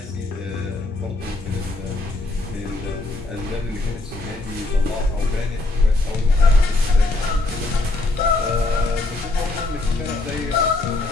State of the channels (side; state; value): right; quieter; 3.0 dB